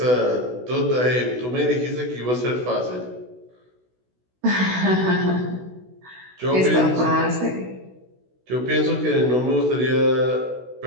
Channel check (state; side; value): late; left; 16 ms